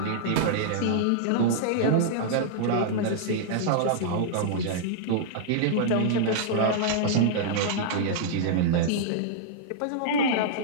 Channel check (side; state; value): both; different; correlation -0.02